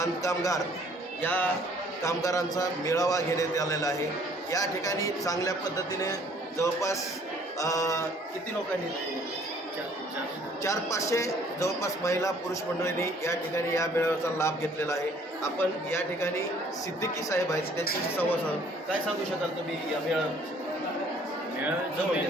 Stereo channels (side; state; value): both; normal; correlation 0.58